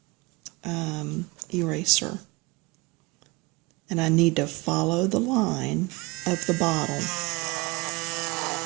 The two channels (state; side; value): quieter; left; 24.5 dB